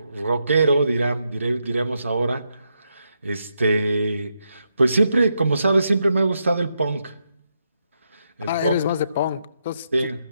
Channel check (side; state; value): both; inverted; correlation -0.82